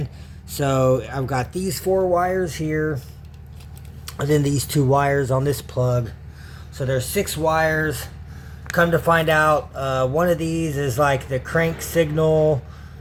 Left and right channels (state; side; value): identical; both; correlation 1.00